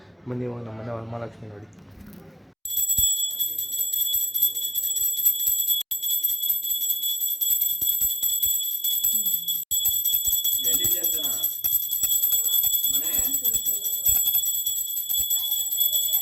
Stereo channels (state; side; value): identical; both; correlation 1.00